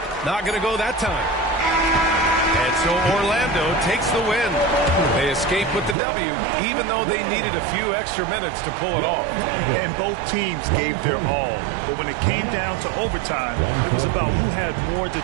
Not going to go that time. And so Orlando takes the win. They escape with the W, even though they needed a few extra minutes to pull it off. And both teams gave their all. But when it came down to overtime, it was about who had more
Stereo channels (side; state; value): left; drops out; at 6.0 s